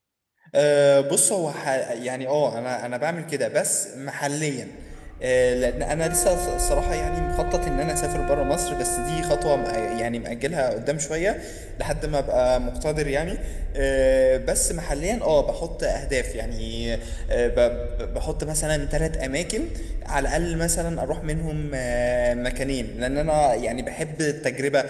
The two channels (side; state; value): both; identical; correlation 1.00